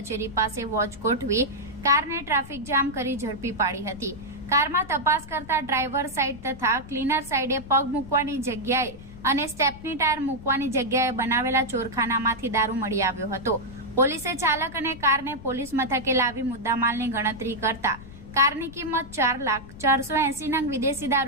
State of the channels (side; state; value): left; noise; rumble, 16 dB below the sound